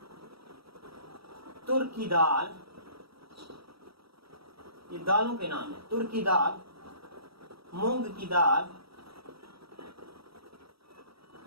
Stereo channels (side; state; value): left; late; 0.76 ms